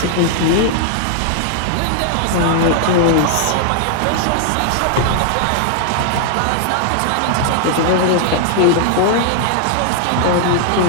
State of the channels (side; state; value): both; different; correlation -0.01